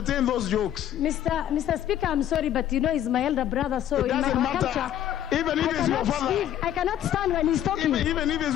those jokes. Mr. Speaker, I'm sorry, but you know he's my elder brother, so it doesn't matter. Even if it's your father. I cannot stand when he's talking. Even if it's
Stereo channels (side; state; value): right; quieter; 11.2 dB